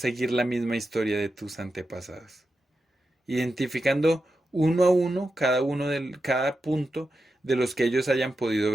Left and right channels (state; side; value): normal; both; correlation 0.89